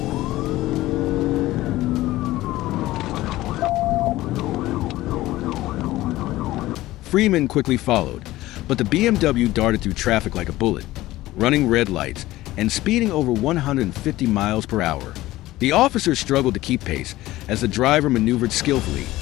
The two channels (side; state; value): right; quieter; 16.9 dB